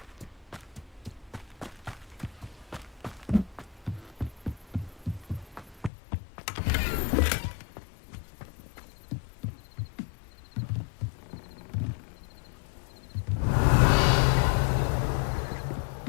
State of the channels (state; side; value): drops out; right; at 5.9 s